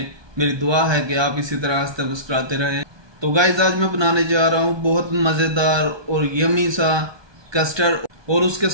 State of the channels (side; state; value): left; late; 1.2 ms